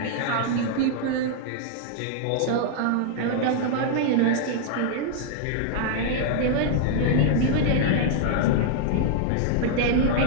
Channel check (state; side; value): different; both; correlation -0.01